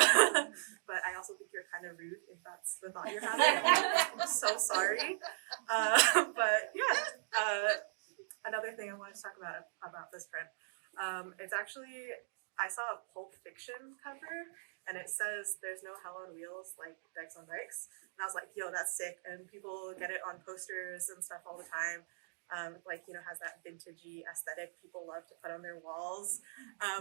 But I also think you're kind of rude if that's the thought you're having. I'm so sorry. But yeah. Another thing I wanted to talk about this print. It's actually, I saw a Pulp Fiction cover, and it says there's no hell on wheels like Dykes on Bikes. And I was like, yo, that's sick. And people get it on posters and stuff all the time. Like, you know, has that vintagey aesthetic people love to put on their walls.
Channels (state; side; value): silent; left; digital silence